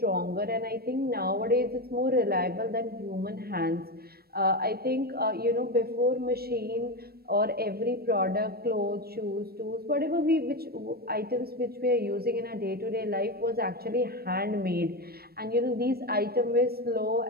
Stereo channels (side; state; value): left; late; 0.45 ms